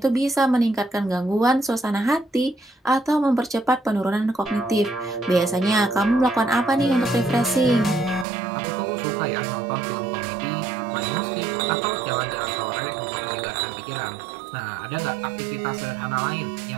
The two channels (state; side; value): drops out; left; at 8.2 s